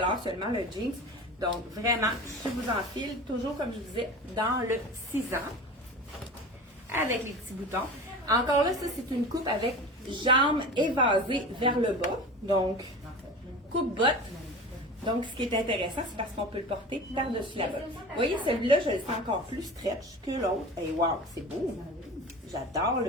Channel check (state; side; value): normal; both; correlation 0.34